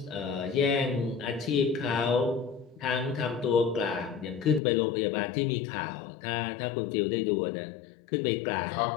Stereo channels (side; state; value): right; drops out; at 4.6 s